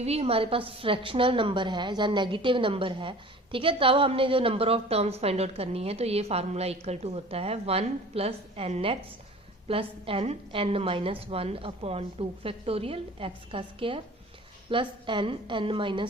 भी हमारे पास फ्रैक्शनल नंबर है या नेगेटिव नंबर है, ठीक है, तब हमने जो number of terms find out करनी है तो ये फार्मूला इक्वल टू होता है 1 plus n x plus n minus 1 upon 2 factorial x का square plus n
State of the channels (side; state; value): both; normal; correlation 0.44